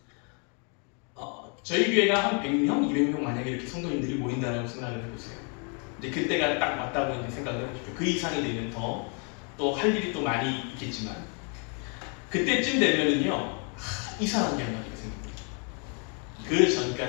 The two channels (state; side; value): quieter; right; 37.9 dB